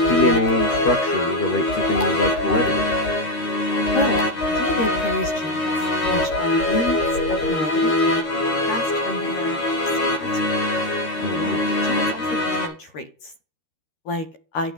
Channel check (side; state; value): right; late; 13 ms